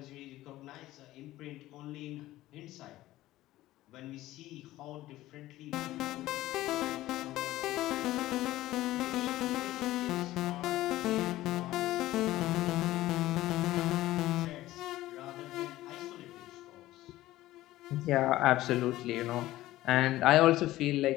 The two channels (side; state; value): right; quieter; 16.0 dB